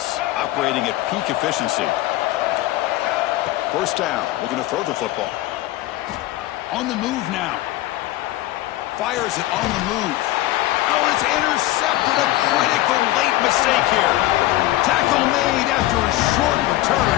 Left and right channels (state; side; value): quieter; right; 16.6 dB